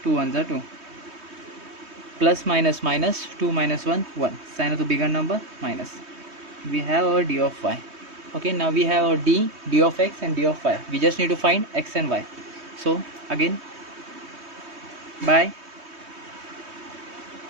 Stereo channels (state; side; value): late; left; 3.2 ms